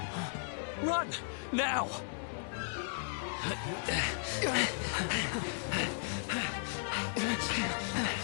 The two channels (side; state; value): right; silent; digital silence